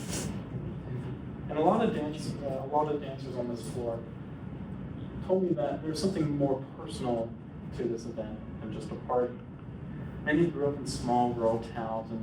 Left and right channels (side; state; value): both; identical; correlation 1.00